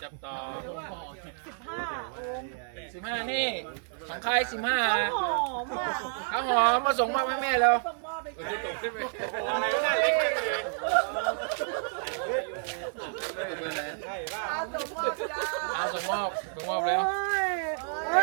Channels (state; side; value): silent; left; digital silence